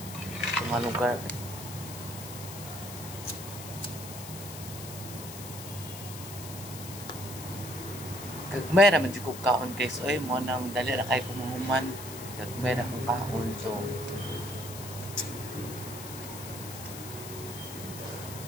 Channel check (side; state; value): left; noise; hiss, 11 dB below the sound